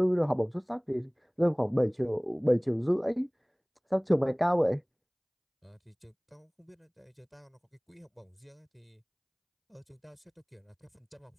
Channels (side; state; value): both; identical; correlation 1.00